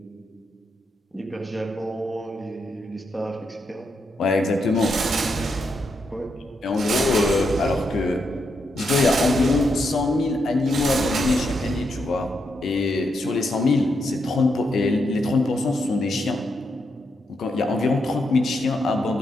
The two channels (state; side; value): normal; both; correlation 0.81